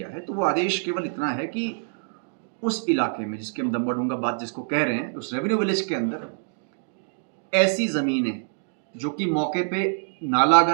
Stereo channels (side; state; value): left; silent; digital silence